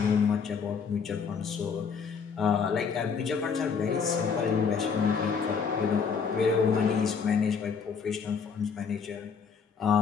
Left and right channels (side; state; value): right; quieter; 6.0 dB